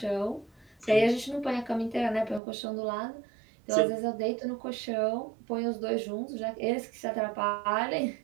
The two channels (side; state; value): left; drops out; at 2.4 s